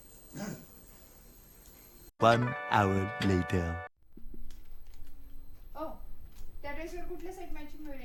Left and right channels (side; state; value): both; identical; correlation 1.00